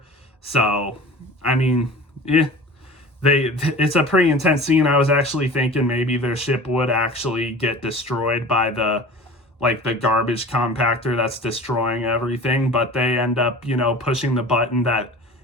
So, I mean, it's a pretty intense scene. I was actually thinking maybe their ship would actually get destroyed by the garbage compactor that's destroying everything. But they end up, pushing the button that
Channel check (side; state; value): both; normal; correlation 0.39